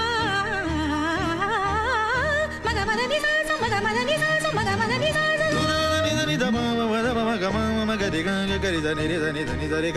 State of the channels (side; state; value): both; identical; correlation 1.00